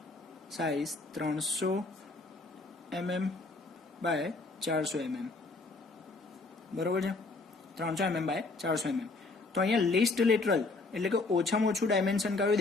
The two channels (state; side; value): quieter; right; 3.5 dB